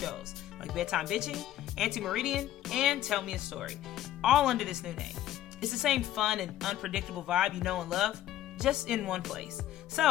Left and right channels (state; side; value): quieter; right; 12.8 dB